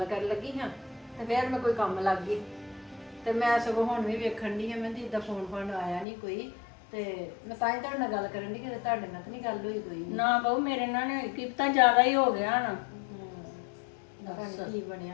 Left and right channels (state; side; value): drops out; right; at 6.1 s